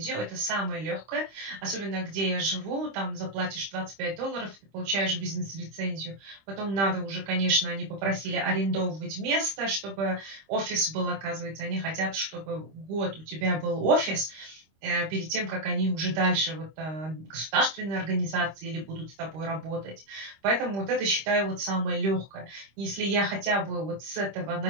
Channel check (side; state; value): left; late; 25 ms